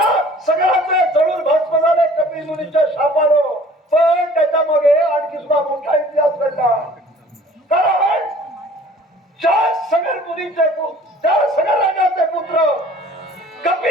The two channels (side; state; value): both; normal; correlation 0.50